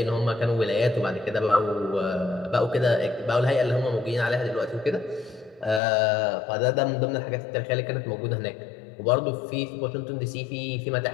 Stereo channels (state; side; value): drops out; right; at 5.8 s